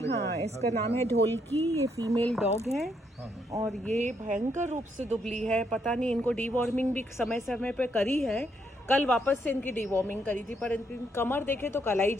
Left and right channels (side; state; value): both; normal; correlation 0.75